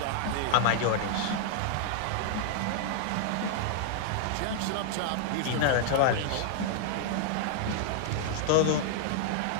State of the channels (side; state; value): both; different; correlation -0.01